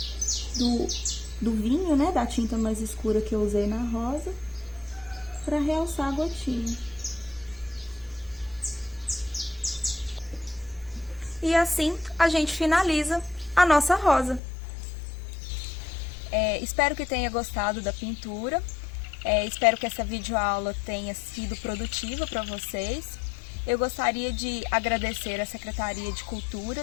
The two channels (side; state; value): right; drops out; at 14.4 s